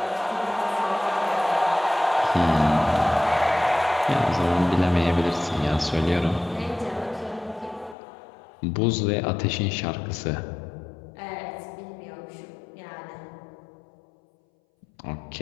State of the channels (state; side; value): drops out; right; at 8.0 s